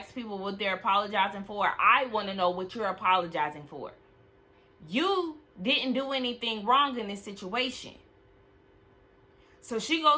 people what they're apologizing for. I want to know what you're apologizing for. You didn't do anything wrong in this situation. So she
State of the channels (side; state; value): both; identical; correlation 1.00